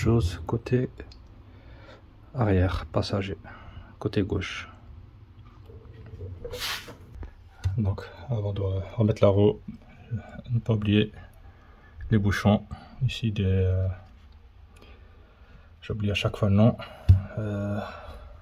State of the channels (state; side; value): identical; both; correlation 1.00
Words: côté arrière passager, côté gauche. Donc avant de remettre la roue, ne pas oublier les bouchons ici j'oublie à chaque fois le nom,